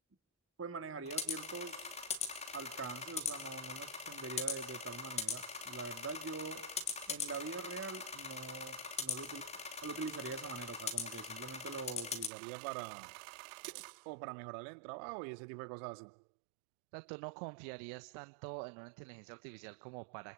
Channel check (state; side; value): drops out; left; at 12.3 s